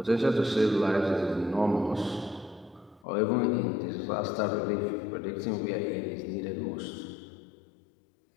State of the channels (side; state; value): right; drops out; at 3.1 s